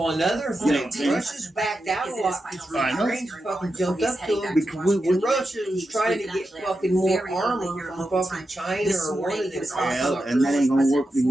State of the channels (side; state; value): both; normal; correlation 0.89